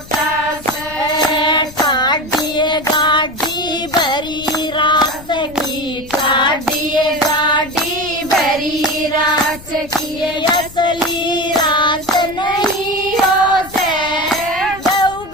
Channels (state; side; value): noise; left; rumble, 18 dB below the sound